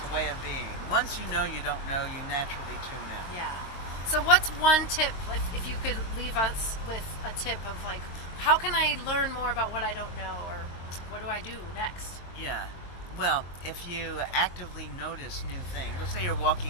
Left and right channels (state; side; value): late; right; 22 ms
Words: a way of being. Once you know you don't know, you naturally tune in. Yeah. So what's one tip, if you could leave us with a tip of like, how can I learn more about what I don't know, or what do I do next? Yeah. Well, if you actively notice new things, let's say you're